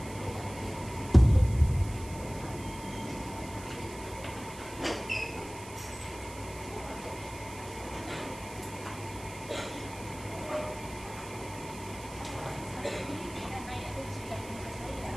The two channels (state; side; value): noise; right; hiss, 16 dB below the sound